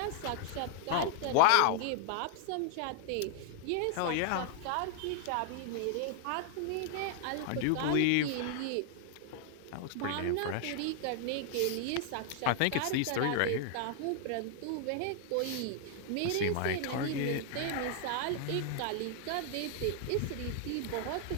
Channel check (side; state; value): both; different; correlation 0.00